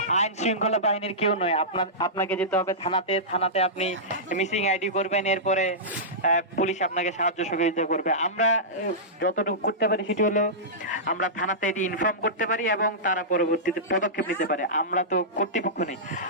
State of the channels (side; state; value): both; normal; correlation -0.15